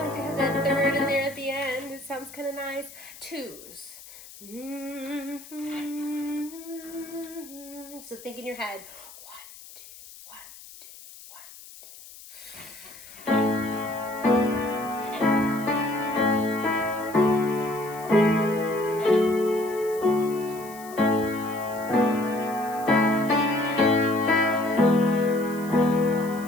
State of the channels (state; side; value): noise; left; hiss, 18 dB below the sound